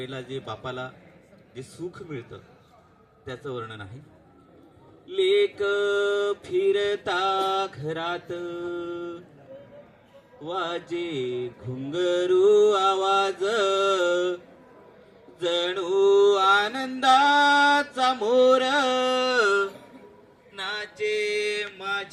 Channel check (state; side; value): identical; both; correlation 1.00